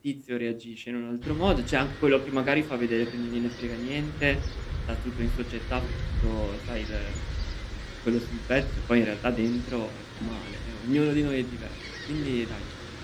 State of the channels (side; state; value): both; identical; correlation 1.00